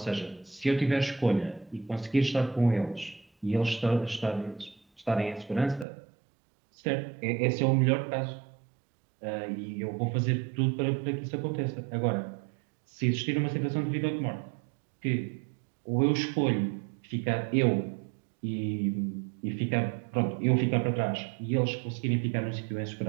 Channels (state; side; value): drops out; left; at 5.9 s